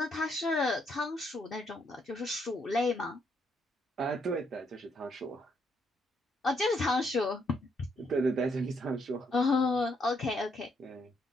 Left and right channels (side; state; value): both; normal; correlation 0.73